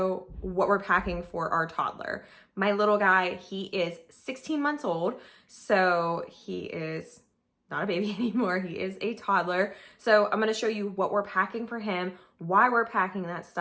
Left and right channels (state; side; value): identical; both; correlation 1.00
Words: what we're packing for our toddler. My little guy, he is 16 months old, so he is not a baby anymore. He is a toddler. So I'm going to show you what we're packing for him, why we're packing that